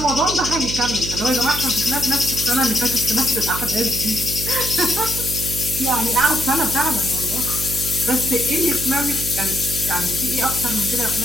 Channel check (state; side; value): noise; right; hum, 7 dB below the sound